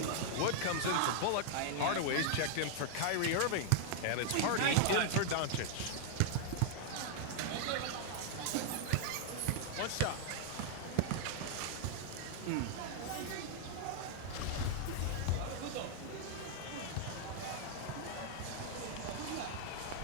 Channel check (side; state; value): both; different; correlation 0.00